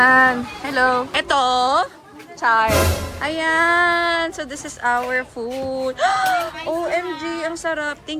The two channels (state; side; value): identical; both; correlation 1.00